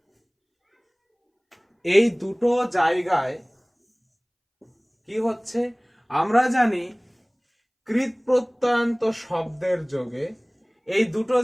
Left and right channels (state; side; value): identical; both; correlation 1.00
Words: এই দুটো জায়গায় কি হচ্ছে, আমরা জানি কৃত প্রত্যয়ান্ত শব্দের যোগে এই দুটো